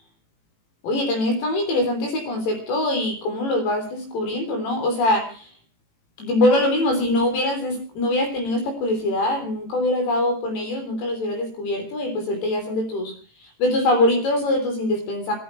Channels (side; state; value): right; late; 18 ms